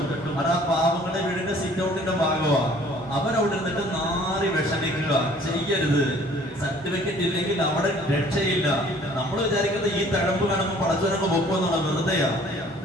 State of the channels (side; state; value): both; normal; correlation 0.54